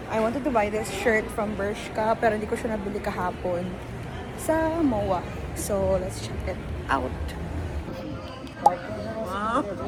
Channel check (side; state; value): both; identical; correlation 1.00